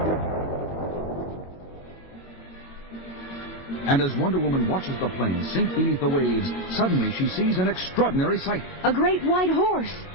And as Wonder Woman watches the plane sink beneath the waves, suddenly she sees an extraordinary sight. A great white horse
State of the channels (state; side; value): late; right; 22 ms